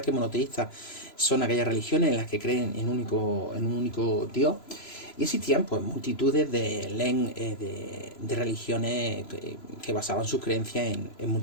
que monoteístas son aquellas religiones en las que creen en un único Dios. Y existían pues multitudes de religiones que basaban sus creencias en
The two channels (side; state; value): right; late; 3.0 ms